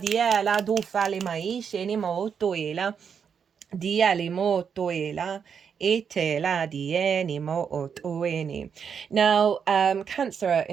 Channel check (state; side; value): quieter; left; 7.0 dB